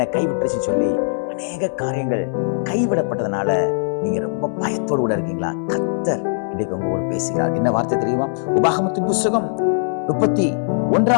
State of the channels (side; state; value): right; silent; 66 dB below the other